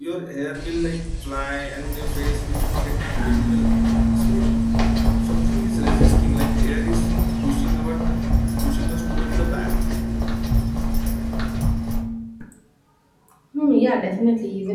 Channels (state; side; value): identical; both; correlation 1.00